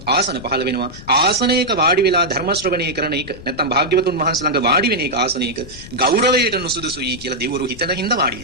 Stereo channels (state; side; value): noise; left; rumble, 16 dB below the sound